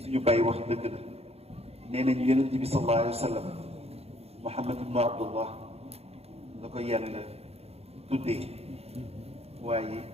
bàyyi wax dëgg la nee nañu Yonent bi sallallahu alayhi wa sallam Muhammad ibnu Abdullah la ko yàlla tuddee waaye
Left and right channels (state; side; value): late; left; 0.29 ms